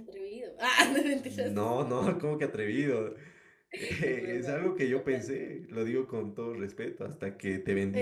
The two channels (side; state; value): both; identical; correlation 1.00